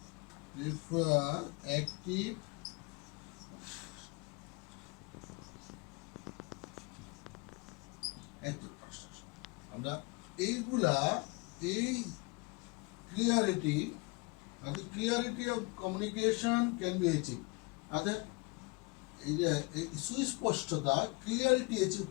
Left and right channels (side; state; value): right; quieter; 27.6 dB